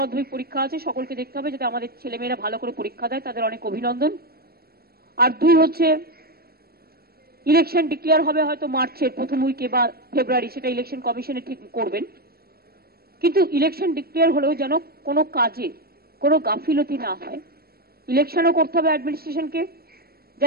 পরীক্ষা আছে, সকলকে দেখতে হবে যাতে আমাদের ছেলেমেয়েরা ভালো করে পরীক্ষা দেয়, তাদের অনেক অভিনন্দন। আর দুই হচ্ছে ইলেকশন ডিক্লেয়ার হবে হয়তো মার্চের প্রথম উইকে বা ফেব্রুয়ারি, সেটা ইলেকশন কমিশনে ঠিক করবেন। কিন্তু ইলেকশন ডিক্লেয়ার হলেও যেন কোনো কাজে কোনো গাফিলতি না হয়। ইলেকশনও করতে হবে অ্যাডমিনিস্ট্রেশনকে,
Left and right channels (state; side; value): late; left; 0.45 ms